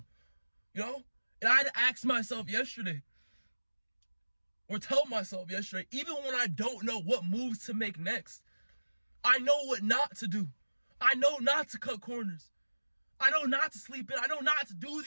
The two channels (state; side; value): inverted; both; correlation -1.00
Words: And I had to ask myself yesterday, or tell myself yesterday, even when I don't know what moves to make next, I know what not to do. I know not to cut corners. I know not to sleep in. I know not to do